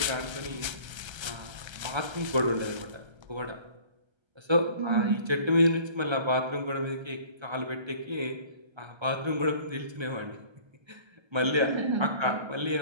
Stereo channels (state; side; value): late; left; 1.3 ms